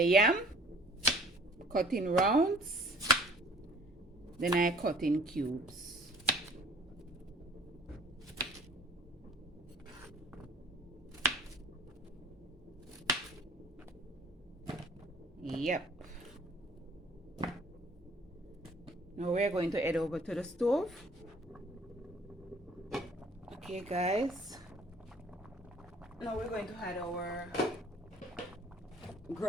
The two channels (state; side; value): normal; both; correlation 0.52